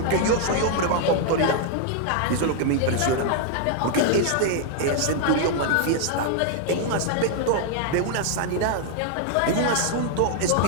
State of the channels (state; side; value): different; both; correlation -0.01